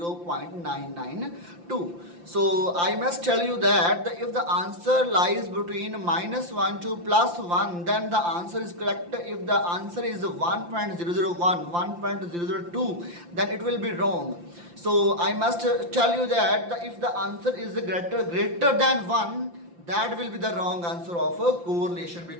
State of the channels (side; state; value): left; late; 5.8 ms